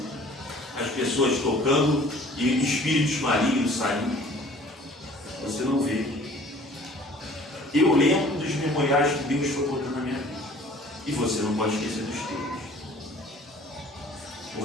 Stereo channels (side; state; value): both; normal; correlation 0.51